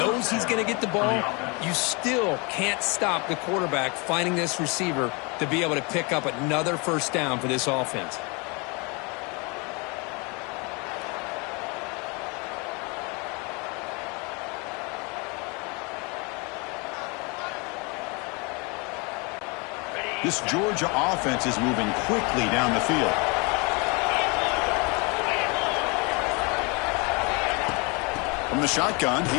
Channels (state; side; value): quieter; right; 30.0 dB